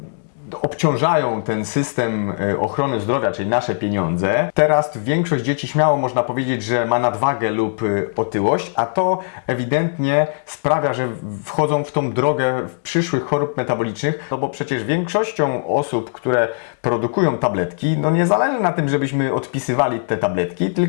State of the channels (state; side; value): silent; right; digital silence